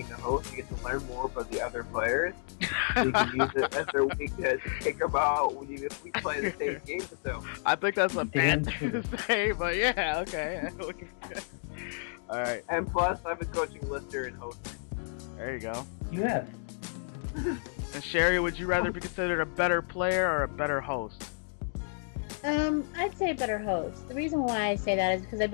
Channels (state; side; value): silent; right; digital silence